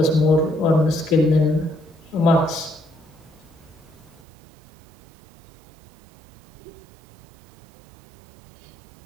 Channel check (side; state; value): left; drops out; at 4.2 s